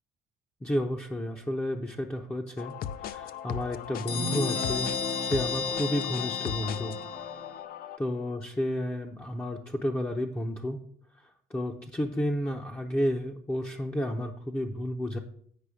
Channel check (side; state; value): both; normal; correlation 0.72